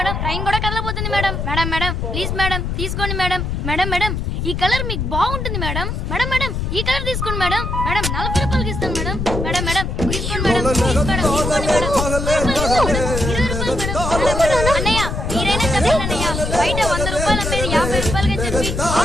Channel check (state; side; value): noise; left; rumble, 2 dB below the sound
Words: ట్రైన్ కూడా కదలబోతుంది madam. Madam madam please madam తీసుకోండి మేడం. మేడం మేడం ఈ కలర్ మీకు బాగుంటుంది మేడం. మేడం మేడం ఈ కలర్ తీసుకోండి మేడం. మేడం 40 రూపాయలకి ఇస్తాను మేడం. మేడం మేడం తీసుకోండి మేడం. ప్లీజ్ మేడం తీసుకోండి మేడం. 20 రూపాయలు మేడం. అన్నయ్య మీరైనా చెప్పండి అన్నయ్య. బయట 100 రూపాయలు అమ్మేది 50 రూపాయలకి చెప్పి